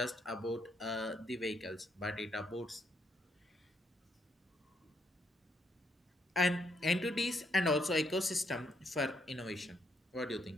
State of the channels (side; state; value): both; normal; correlation 0.75